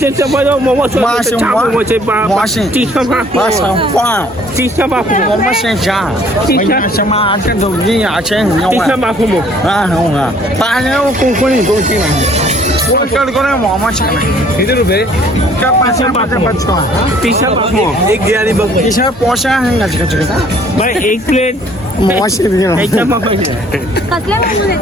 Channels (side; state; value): both; normal; correlation 0.58